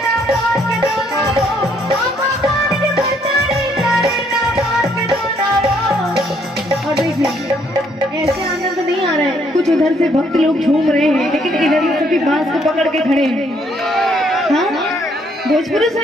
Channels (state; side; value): normal; both; correlation 0.68